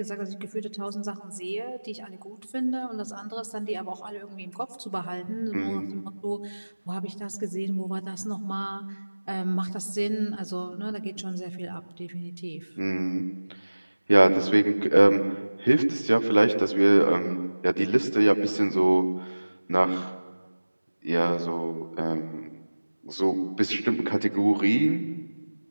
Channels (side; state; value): both; inverted; correlation -1.00